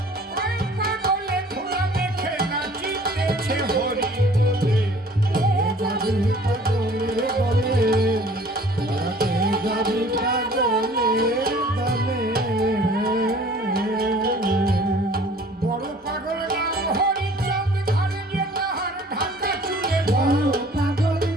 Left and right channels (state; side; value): normal; both; correlation 0.51